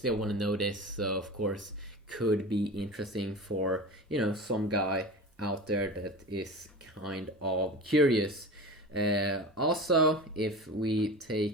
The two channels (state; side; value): normal; both; correlation 0.32